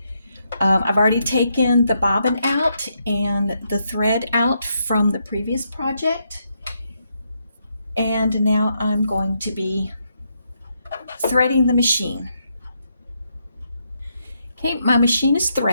I've already taken the bobbin out and the thread out from the previous project, and now I'm going to be threading the machine. Okay, my machine is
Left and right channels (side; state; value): both; inverted; correlation -0.79